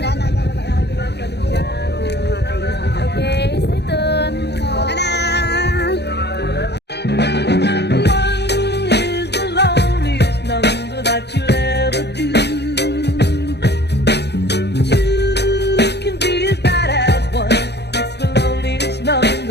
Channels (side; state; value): right; late; 0.49 ms